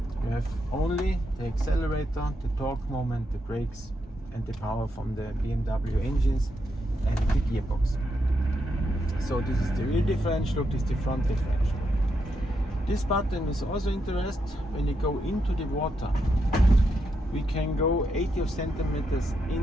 You have only the accelerator, the torque moment, the brakes and the power from the BMW engines and the gearbox. So this is the rear differential look, this is the front differential. This button is also interesting when you go into the water. We can go 80 centimeters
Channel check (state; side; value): normal; both; correlation 0.82